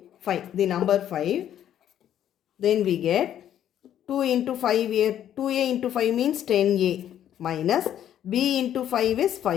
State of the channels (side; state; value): right; quieter; 10.7 dB